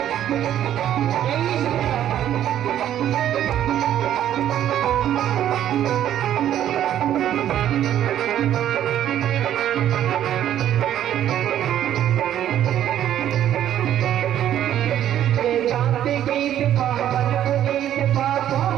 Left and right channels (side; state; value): left; quieter; 11.2 dB